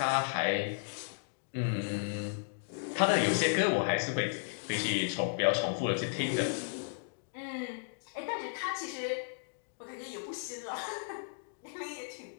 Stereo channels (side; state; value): right; silent; digital silence